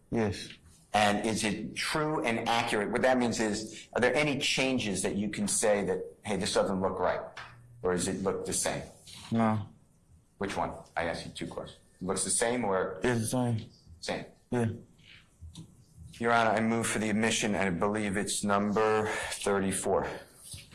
Yes. And is it true and accurate? What that means is, are there any changes that you can say that, hey, this doesn't look right? Or does it look the same? No. Which one? I asked you 2 questions. Looks the same or It's the same. same? Yeah. Your Honor, I move for the admission, and I believe it's number 34.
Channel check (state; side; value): identical; both; correlation 1.00